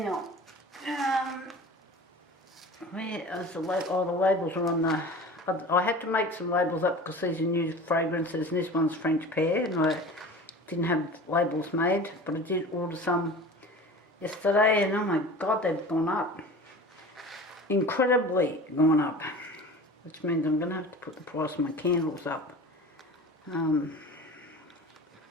where is the label? Oh, the labels are on the... I had to make some labels up because these are new fragrances, and this one's French pear, and I didn't have labels made, but I did order some yesterday, and oh my god, they've gone up. Incredibly gone up. Which means I'm going to have to put the price of my candles up. So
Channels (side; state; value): both; normal; correlation 0.38